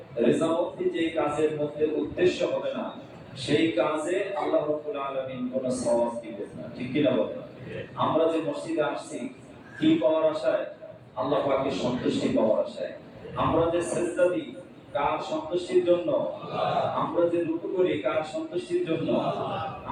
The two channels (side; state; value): both; identical; correlation 1.00